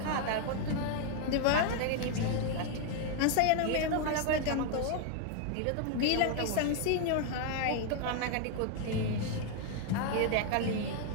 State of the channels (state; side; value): different; both; correlation 0.00